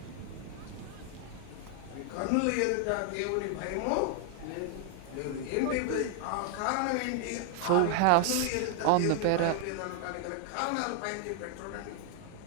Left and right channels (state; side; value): different; both; correlation 0.00